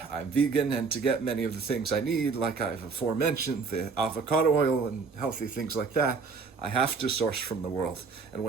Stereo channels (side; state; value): left; quieter; 4.8 dB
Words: I'm vegan, and to get many of the things I need, like I've aforementioned, the avocado oil and healthy things like that, I have to source from the world. And